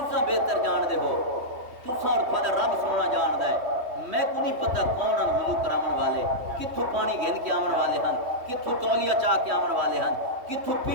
بہتر جان دے ہو تساں اور تھوڑا رب سونا جان دے میں کو نہیں پتہ کون ہیں وضو کرامن والے کتھوں پانی گھن کے آمن والے ہیں کتھوں تولیہ چاہ کے آمن والے ہیں کتھوں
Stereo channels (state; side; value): late; left; 3.1 ms